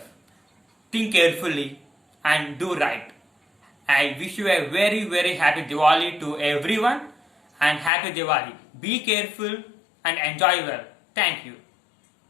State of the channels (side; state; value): right; drops out; at 7.9 s